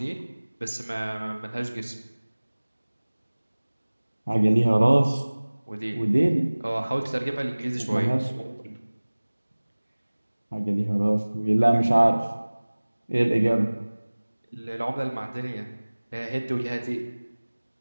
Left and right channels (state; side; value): inverted; both; correlation -1.00